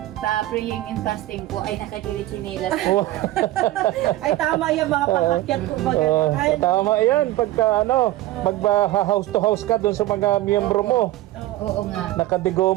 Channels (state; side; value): quieter; left; 16.0 dB